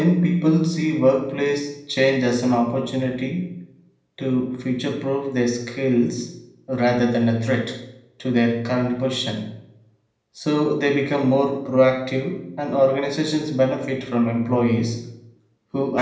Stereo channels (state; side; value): identical; both; correlation 1.00